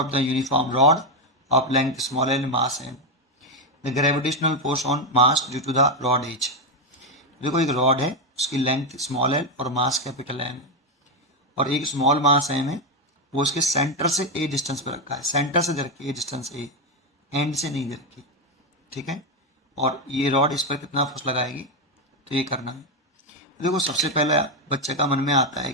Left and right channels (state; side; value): normal; both; correlation 0.07